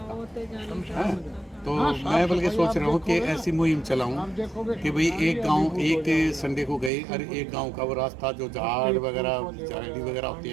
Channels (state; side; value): drops out; left; at 6.9 s